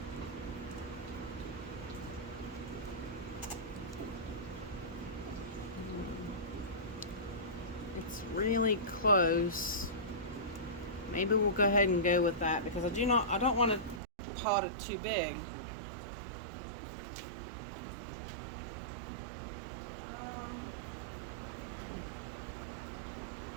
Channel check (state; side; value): drops out; left; at 14.0 s